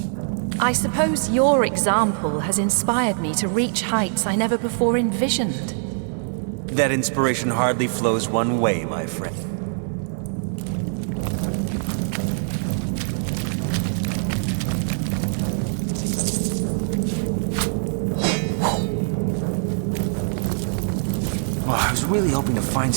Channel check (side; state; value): left; silent; 63 dB below the other